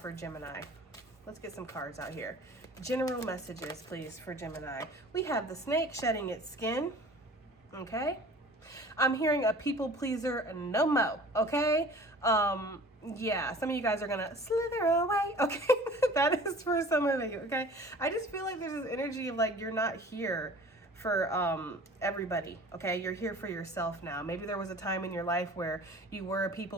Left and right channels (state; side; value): normal; both; correlation 0.45